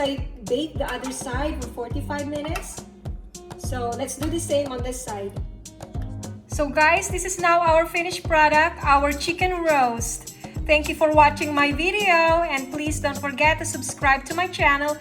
baked the other side for 45 minutes. So let's do the same on this side. So guys, this is now our finished product, our chicken roast. Thank you for watching my video, and please don't forget to subscribe to my channel,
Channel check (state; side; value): identical; both; correlation 1.00